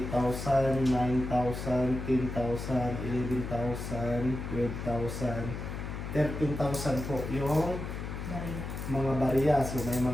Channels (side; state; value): left; noise; hum, 6 dB below the sound